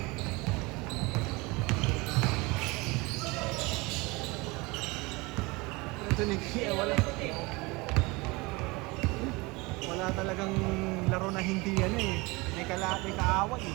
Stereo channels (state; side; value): quieter; left; 24.6 dB